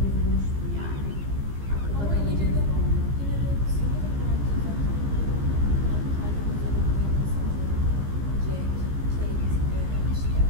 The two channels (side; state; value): left; late; 15 ms